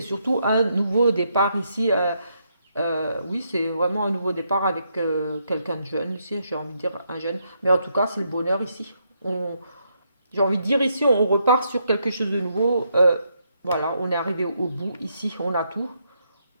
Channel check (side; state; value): both; inverted; correlation -0.77